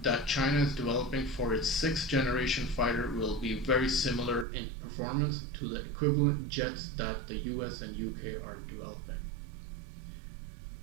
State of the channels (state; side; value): drops out; left; at 4.5 s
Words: that China is developing for its 6th generation fighter will be very similar in performance to the equivalent jets that the US and UK are developing.